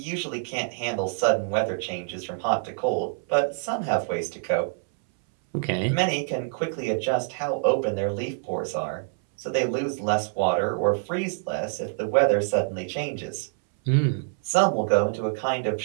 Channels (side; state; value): left; silent; 61 dB below the other